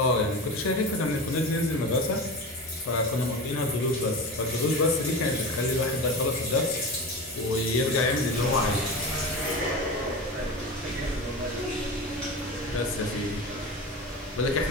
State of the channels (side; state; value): both; normal; correlation 0.28